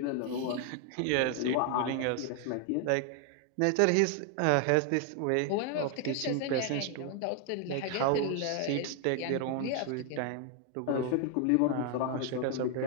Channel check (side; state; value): both; different; correlation 0.01